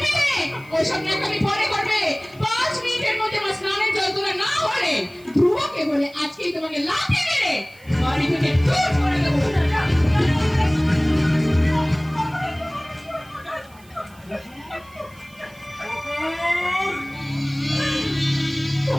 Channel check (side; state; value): right; noise; hiss, 27 dB below the sound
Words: মেয়ে, ওসব ন্যাকামি পরে করবে। 5 মিনিটের মধ্যে আমার স্নানের জল তোলা না হলে ধ্রুবকে বলে আজকেই তোমাকে লাথি মেরে বাড়ি থেকে দূর করে দেবো।